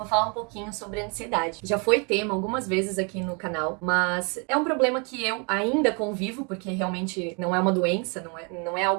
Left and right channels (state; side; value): quieter; left; 33.8 dB